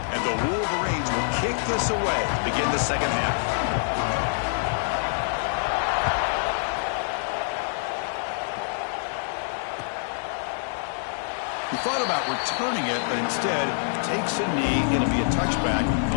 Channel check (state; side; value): silent; right; digital silence